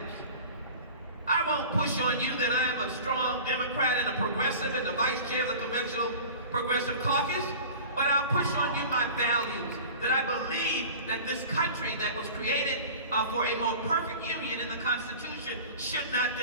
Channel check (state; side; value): inverted; both; correlation -0.39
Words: I won't push on you that I am a strong Democrat and a progressive and the vice chair of the Conventional Progressive Caucus, but I'll push on you my values, that I believe that this country that was created for a more perfect union in the Constitution should not